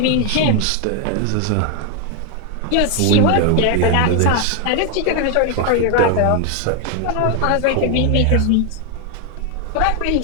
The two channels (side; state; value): both; different; correlation 0.01